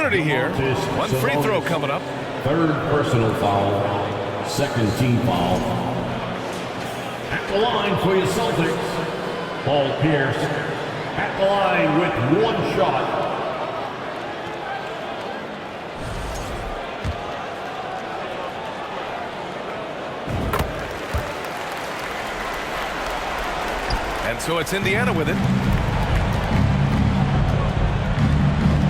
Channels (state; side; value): identical; both; correlation 1.00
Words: here. One free throw coming up. Third personal foul. Second team foul. At the line for your Celtics, Paul Pierce. At the line with 1 shot. And so it's Indiana with it.